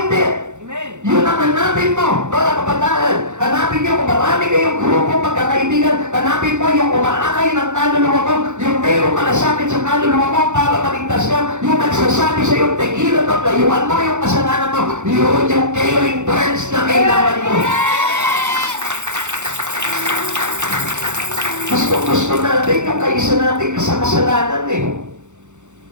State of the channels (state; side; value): late; left; 0.84 ms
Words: it. Yun ang hanapin mo, mga kabataan. Hanapin niyo kung marami kayong grupo magkakaibigan. Hanapin mo yung umaakay ng kaluluwa mo, yung mayroong malasakit sa kaluluwa mo para maligtas ka, yung nagsasabi sa iyo, tegilan mo, layuan mo yung kasalanan mo, yun yung caring friends na kailangan mo. Gusto natin yung kaisa natin sa kasalanan eh.